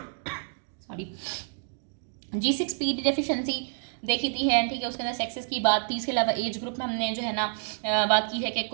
सॉरी G6PD डेफिशिएंसी, देखी थी है, ठीक है, उसके अंदर सेक्सेस की बात थी। इसके अलावा एज ग्रुप में हमने जो है ना बात की है कि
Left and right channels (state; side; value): silent; left; digital silence